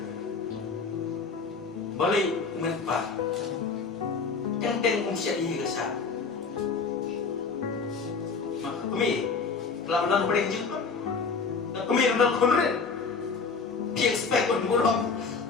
boleh menpa teng set ini kesal mak kami lalu boleh jumpa kami nak konren dia expect pun burung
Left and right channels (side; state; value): right; quieter; 4.8 dB